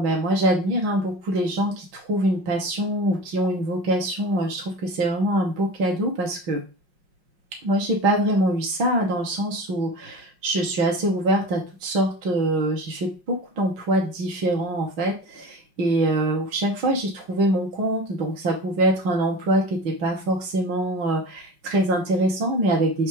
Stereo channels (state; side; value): late; left; 5.5 ms